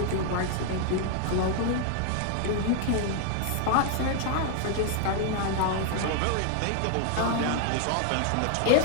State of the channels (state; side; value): different; both; correlation 0.00